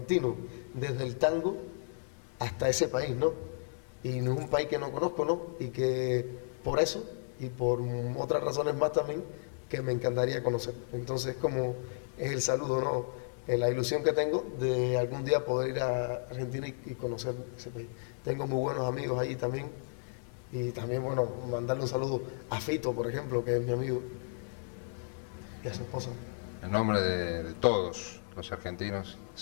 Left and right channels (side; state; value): right; silent; digital silence